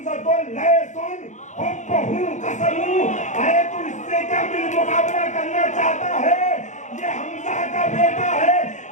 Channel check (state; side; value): late; right; 0.35 ms